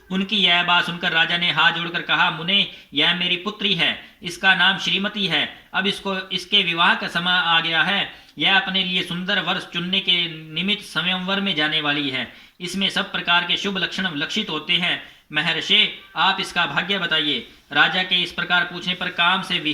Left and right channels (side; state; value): both; identical; correlation 1.00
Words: उनकी यह बात सुनकर राजा ने हाथ जोड़कर कहा, मुने, यह मेरी पुत्री है, इसका नाम श्रीमती है। अब इसके विवाह का समय आ गया है। यह अपने लिए सुंदर वर्ष चुनने के निमित्त स्वयंवर में जाने वाली है। इसमें सब प्रकार के शुभ लक्षण लक्षित होते हैं। महर्षि, आप इसका भाग्य बताइए। राजा के इस प्रकार पूछने पर काम से